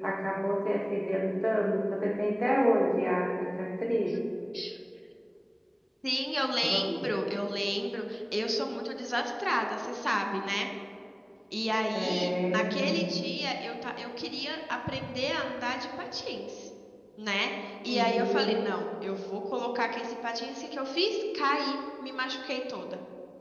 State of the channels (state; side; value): identical; both; correlation 1.00